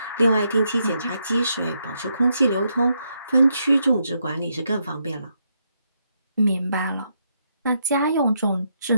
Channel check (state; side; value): inverted; both; correlation -0.79